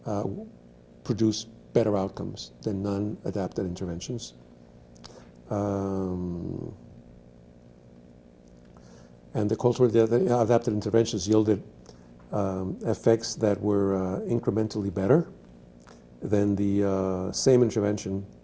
produce better outcomes than non-adapted interventions. And the culturally adapted interventions yielded effects that were incrementally better than the same intervention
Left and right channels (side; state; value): both; identical; correlation 1.00